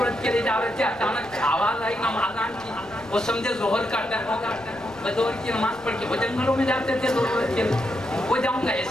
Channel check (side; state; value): left; noise; rumble, 27 dB below the sound